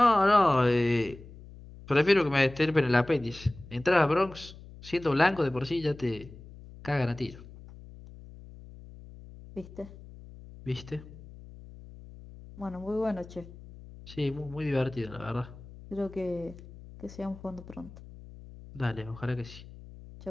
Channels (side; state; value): left; noise; hum, 18 dB below the sound